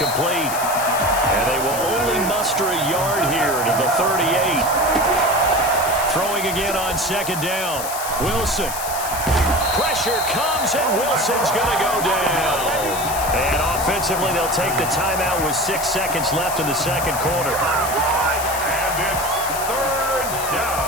And they will only muster a yard here to the 38. Throwing again on 2nd down. Wilson. Pressure comes, and Wilson's going to go down. And offensively, they'll take the timeout with 6 seconds left in the second quarter. And it's 3rd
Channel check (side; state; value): left; noise; hiss, 7 dB below the sound